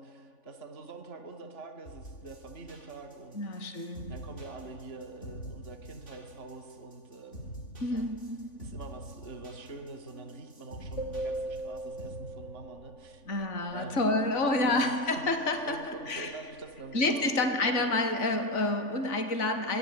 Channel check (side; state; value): right; late; 3.5 ms